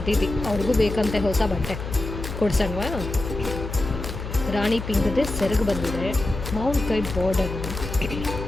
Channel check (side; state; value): left; noise; hum, 7 dB below the sound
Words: ಅವ್ರಿಗೂ ಬೇಕಂತೆ ಹೊಸ ಬಟ್ಟೆ ಕೊಡ್ಸಣ್ವಾ? ರಾಣಿ ಪಿಂಕ್ದೇ ಸೆರಗು ಬಂದಿದೆ. ಮಾವಿನಕಾಯಿ ಬಾರ್ಡರ್,